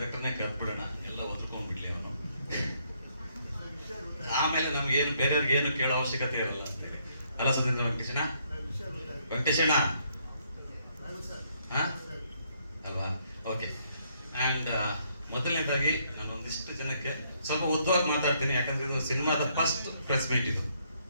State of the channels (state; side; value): inverted; both; correlation -0.70